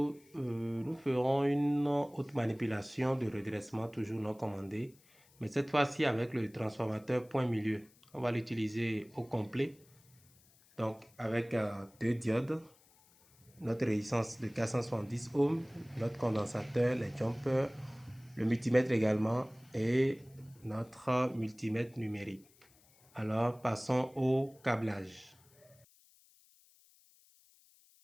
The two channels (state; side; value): noise; left; hiss, 29 dB below the sound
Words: nous ferons une autre manipulation de redressement, toujours non commandée, mais cette fois-ci avec le transformateur point milieu. On va l'utiliser au complet, donc avec deux diodes, notre résistance de 470 ohms, notre condensateur, les jumpers, le multimètre également et notre multimètre numérique. Alors passons au câblage.